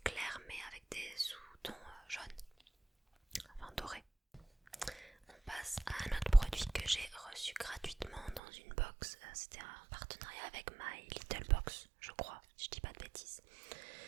mais avec des sous-tons jaunes, enfin dorés. On passe à un autre produit que j'ai reçu gratuitement dans une box. C'était un partenariat avec My Little Box, je crois, si je dis pas de bêtises.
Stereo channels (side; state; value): left; drops out; at 8.4 s